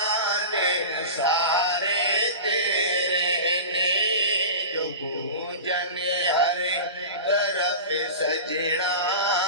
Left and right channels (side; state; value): both; inverted; correlation -0.31